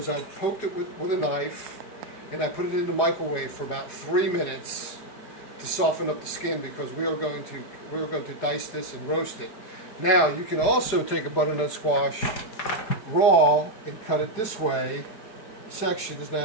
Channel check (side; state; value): right; late; 4.8 ms